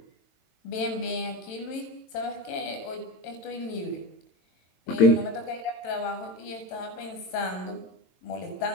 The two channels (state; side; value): late; right; 22 ms